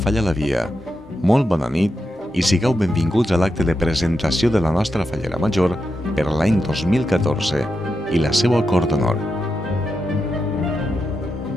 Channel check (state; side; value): normal; both; correlation 0.87